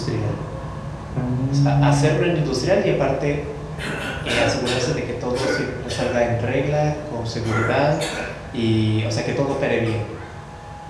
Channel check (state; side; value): identical; both; correlation 1.00